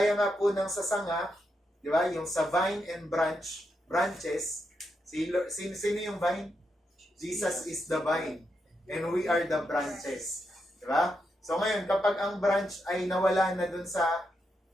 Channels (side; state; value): both; normal; correlation 0.83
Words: nga po ng sasanga, di ba? Yung sa vine and branches, sino yung vine? Jesus is the vine. And we are the branches. Di ba? So ngayon, kapag ang branch ay nawala na dun sa